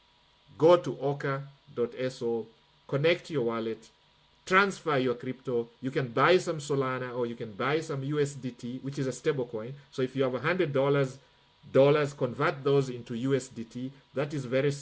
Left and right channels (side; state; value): both; identical; correlation 1.00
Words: Go to oka.so, connect your wallet, transfer your crypto. You can buy some Solana or you can buy some USDT, which is a stable coin. So if you have $100, convert those into USDT. That is very